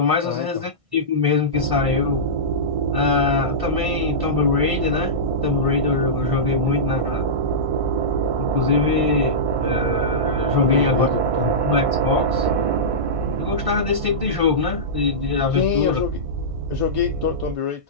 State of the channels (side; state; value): left; late; 1.6 ms